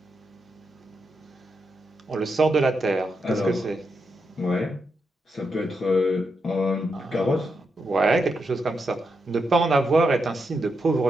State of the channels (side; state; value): both; normal; correlation 0.84